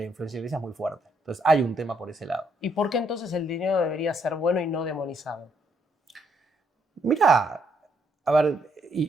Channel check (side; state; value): both; normal; correlation 0.72